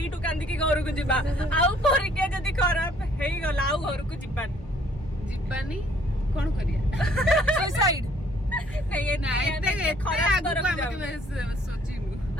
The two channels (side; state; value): both; normal; correlation 0.61